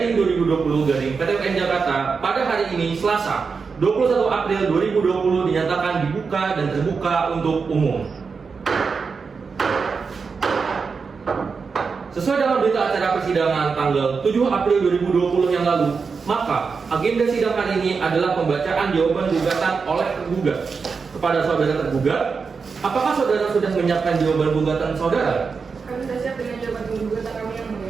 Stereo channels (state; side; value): quieter; left; 5.2 dB